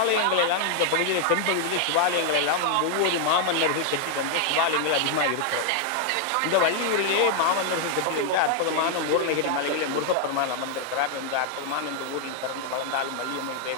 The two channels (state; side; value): different; both; correlation 0.00